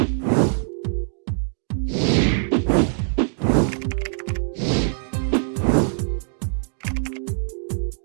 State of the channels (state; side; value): silent; left; digital silence